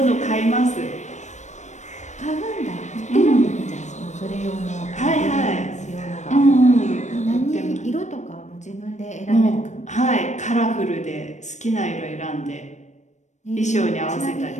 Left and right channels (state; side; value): late; right; 0.34 ms